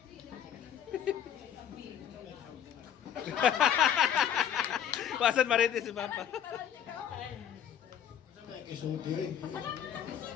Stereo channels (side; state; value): right; quieter; 9.5 dB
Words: Pasan marites si Papa.